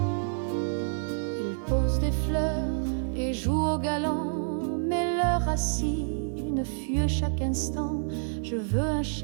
Il pose des fleurs et joue au galant, mais leurs racines fuient chaque instant. Je veux un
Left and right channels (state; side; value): silent; left; digital silence